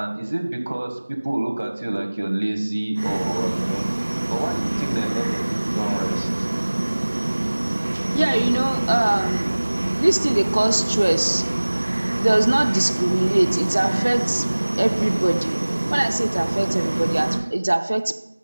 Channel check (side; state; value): both; inverted; correlation -1.00